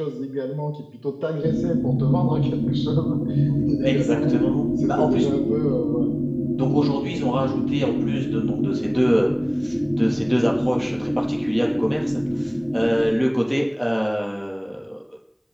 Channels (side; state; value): both; identical; correlation 1.00